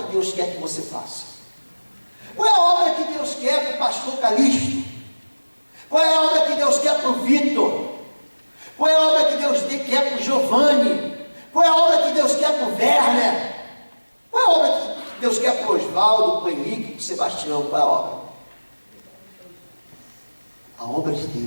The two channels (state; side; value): inverted; both; correlation -1.00